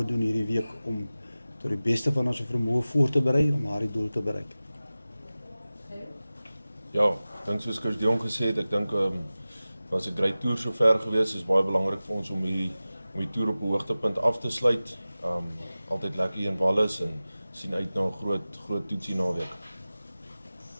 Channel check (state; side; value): inverted; both; correlation -0.97